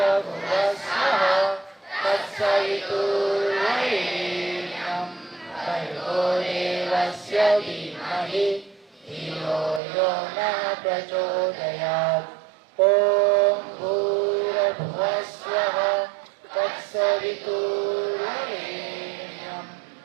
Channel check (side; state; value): left; drops out; at 9.8 s